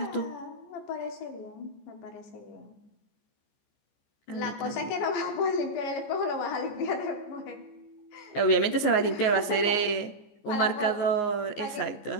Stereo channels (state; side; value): late; right; 14 ms